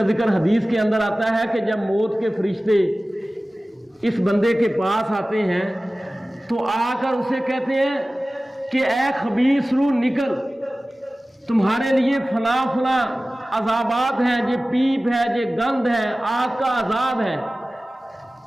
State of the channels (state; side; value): normal; both; correlation 0.97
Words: ذکر حدیث کے اندر آتا ہے کہ جب موت کے فرشتے اس بندے کے پاس آتے ہیں تو آ کر اسے کہتے ہیں کہ اے خبیث روح نکل، تمہارے لیے فلاں فلاں عذابات ہیں، یہ پیپ ہے، یہ گند ہے، آگ کا عذاب ہے۔